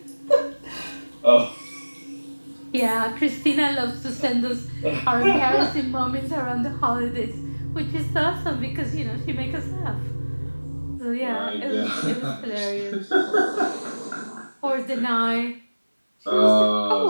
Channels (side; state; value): both; inverted; correlation -1.00